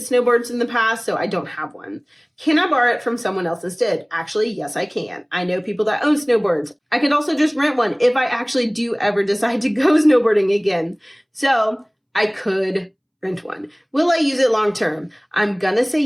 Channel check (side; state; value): both; identical; correlation 1.00